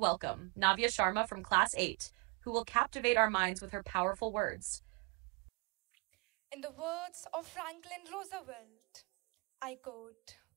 Navya Sharma from Class 8, who will captivate our minds with her powerful words. In the words of Franklin Roosevelt, I quote,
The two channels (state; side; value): quieter; left; 30.7 dB